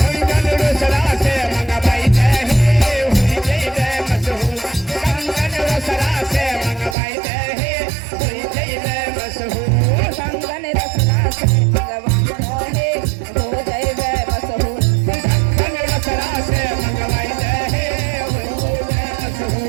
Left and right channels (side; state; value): left; drops out; at 7.0 s